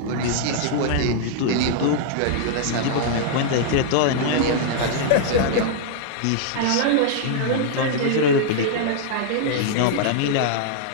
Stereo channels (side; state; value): both; different; correlation -0.01